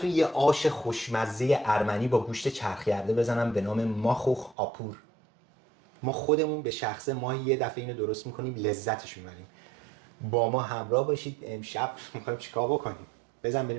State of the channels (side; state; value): left; drops out; at 4.5 s